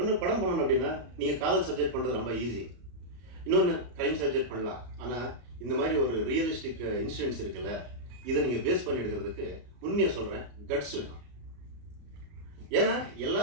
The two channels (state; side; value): late; left; 34 ms